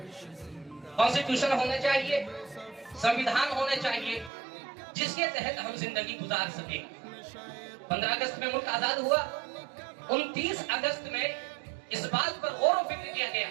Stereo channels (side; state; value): left; drops out; at 4.3 s